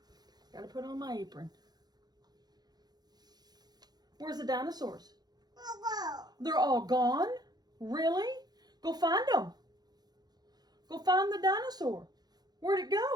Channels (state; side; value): late; left; 0.19 ms